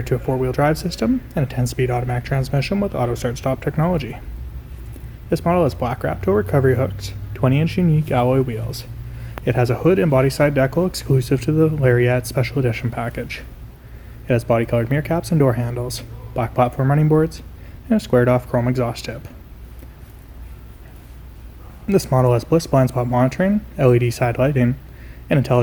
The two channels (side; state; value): both; identical; correlation 1.00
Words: to a 4-wheel drive system and a 10-speed automatic transmission with auto start-stop technology. This model has black wrap-toe recovery hooks, 20-inch unique alloy wheels. It has a hood and body side decal exclusive to the Lariat Special Edition package. It has body-colored mirror caps and door handles, black platform running boards, and a squared-off chrome exhaust tip. This model has bliss blind spot monitoring, LED side lighting, an